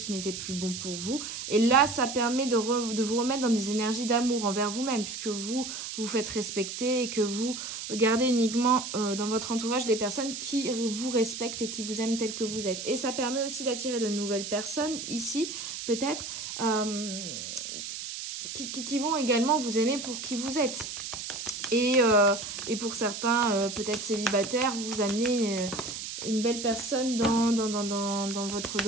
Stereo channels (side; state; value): right; noise; hiss, 7 dB below the sound